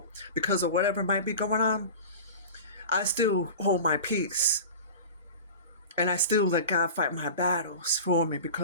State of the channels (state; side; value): inverted; both; correlation -0.34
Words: because of whatever might be going on, I still hold my peace. And I still let God fight my battles for me,